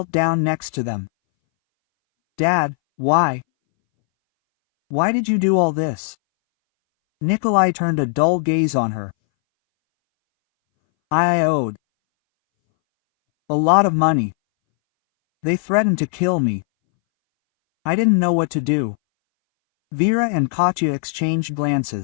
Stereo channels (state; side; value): silent; right; 63 dB below the other